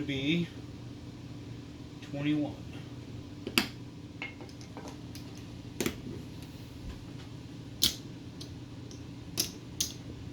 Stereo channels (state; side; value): identical; both; correlation 1.00